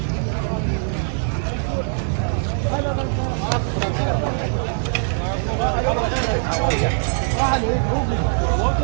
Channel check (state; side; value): silent; left; 65 dB below the other